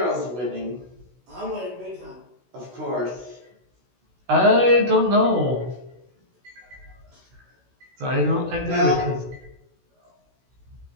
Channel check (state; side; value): late; left; 16 ms